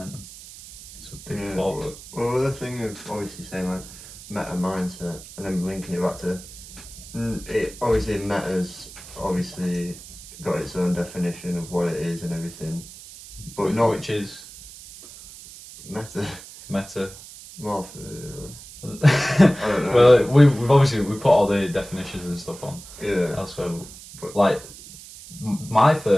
It's a big fall. Well, the thing of obviously saying like meta mindset and then linking it back to it, obviously meta's obviously got its own definition of what it is and everything, but which is meta. More for I don't know. Well, we've obviously put all the definitions and stuff on. Yeah. Elsewhere, but like my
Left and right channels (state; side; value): noise; right; hiss, 16 dB below the sound